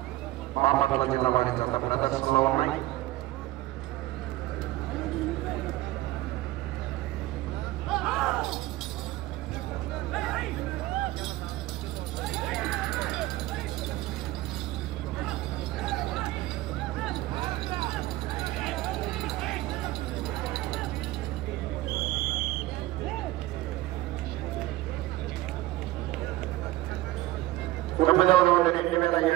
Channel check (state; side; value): quieter; left; 17.3 dB